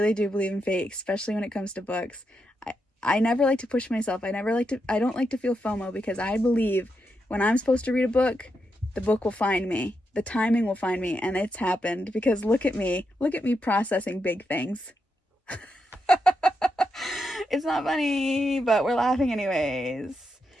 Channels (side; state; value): both; normal; correlation 0.84